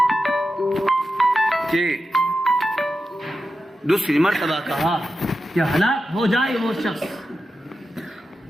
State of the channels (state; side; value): normal; both; correlation 0.91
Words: کہ دوسری مرتبہ کہا کہ ہلاک ہو جائے وہ شخص